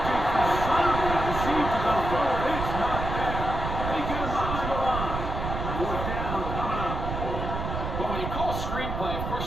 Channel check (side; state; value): right; noise; rumble, 4 dB below the sound